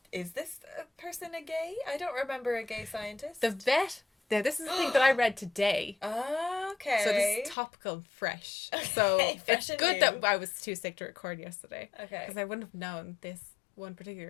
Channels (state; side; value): drops out; right; at 7.6 s